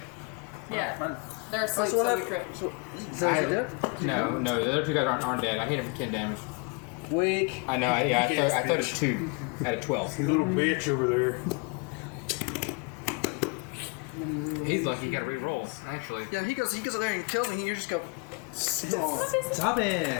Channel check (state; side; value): quieter; right; 33.0 dB